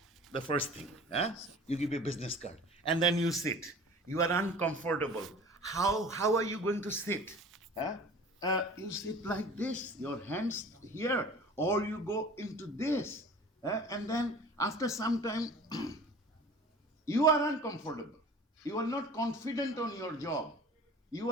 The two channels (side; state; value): both; normal; correlation 0.43